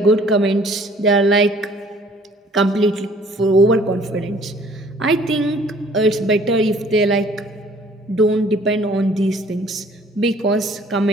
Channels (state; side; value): normal; both; correlation 0.56